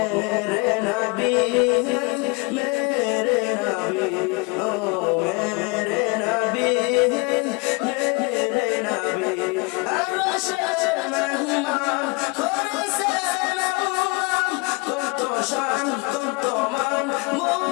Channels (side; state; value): right; quieter; 28.6 dB